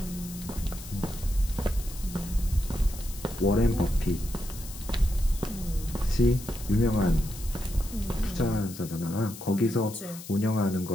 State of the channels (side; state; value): left; noise; hiss, 14 dB below the sound